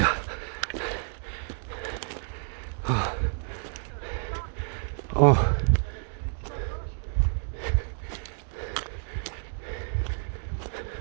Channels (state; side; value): silent; left; 58 dB below the other